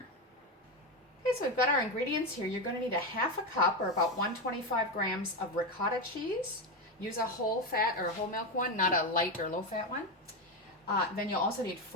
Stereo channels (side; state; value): both; normal; correlation 0.13